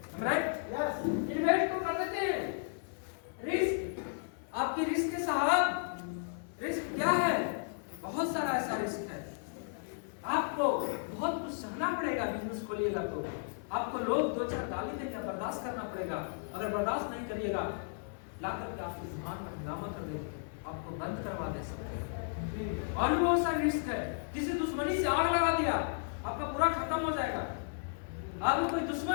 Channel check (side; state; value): right; silent; 55 dB below the other